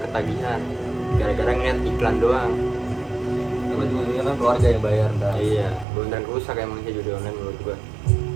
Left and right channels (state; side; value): drops out; left; at 5.9 s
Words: gara-gara ngeliat iklan doang. Tapi ujungnya kan keluarga yang bayar ntar. Iya, beneran rusak emang sih judi online menurut gua.